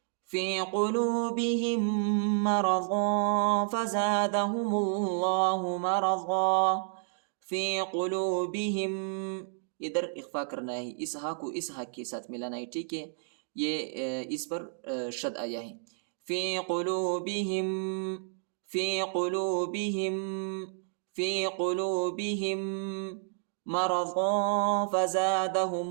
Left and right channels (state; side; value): silent; left; digital silence